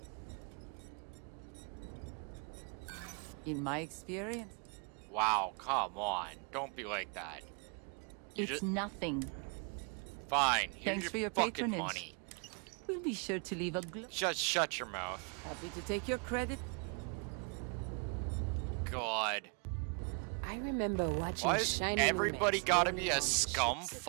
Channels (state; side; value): quieter; left; 37.1 dB